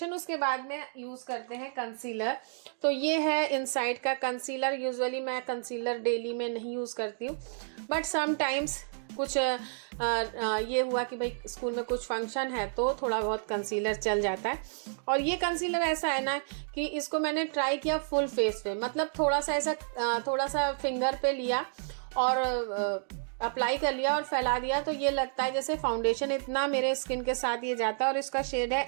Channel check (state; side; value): silent; left; digital silence